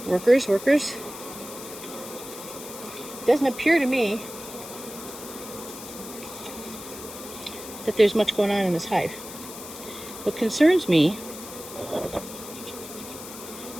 Workers. Doesn't appear to me that there's much going on in this hive. What concerns me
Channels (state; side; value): noise; left; hiss, 13 dB below the sound